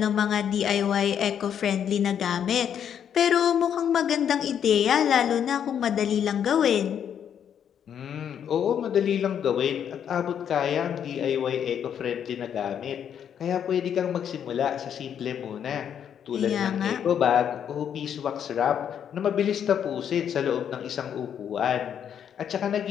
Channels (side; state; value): right; quieter; 8.7 dB